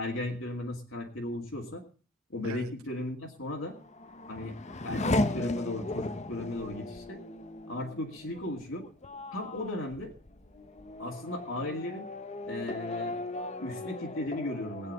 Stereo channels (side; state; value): both; normal; correlation 0.43